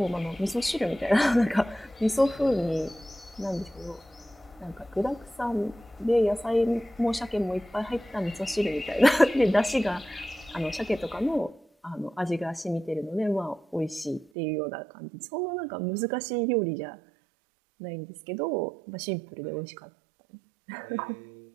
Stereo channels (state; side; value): drops out; left; at 14.3 s